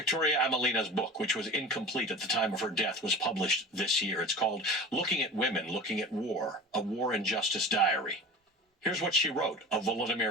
Amelina's book, which was incomplete at the time of her death, was published this year. It's called Looking at Women, Looking at War, A War and Justice Diary. Here's what she wrote of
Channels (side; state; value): both; normal; correlation 0.35